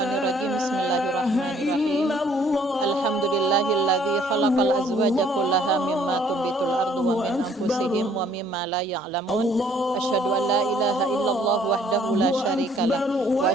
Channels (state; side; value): normal; both; correlation 0.61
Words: Bismillahirrahmanirrahim. Alhamdulillahilladzi khalaqal azwaja kullaha mimma tumbitul ardu wa min anfusihim wa mimma la ya'lamun. Asyhadu an la ilaha illallah wahdahu la syarikalah wa